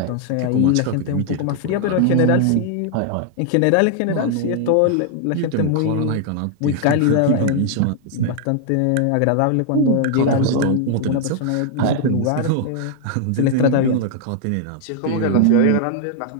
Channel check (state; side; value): different; both; correlation 0.00